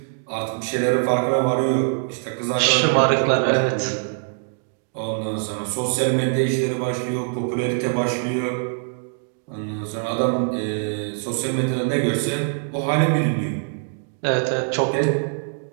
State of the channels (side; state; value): left; silent; 63 dB below the other